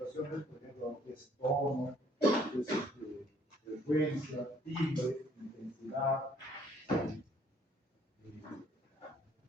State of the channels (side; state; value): both; normal; correlation 0.62